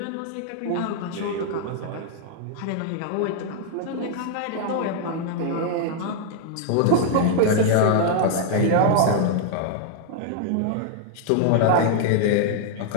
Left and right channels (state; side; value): different; both; correlation -0.01